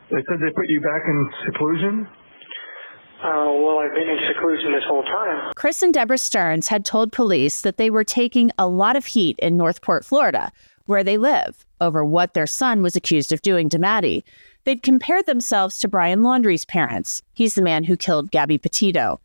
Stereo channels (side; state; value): both; inverted; correlation -1.00